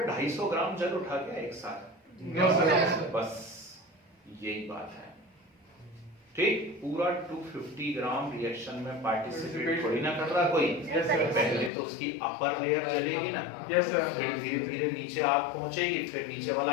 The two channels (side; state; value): right; drops out; at 11.7 s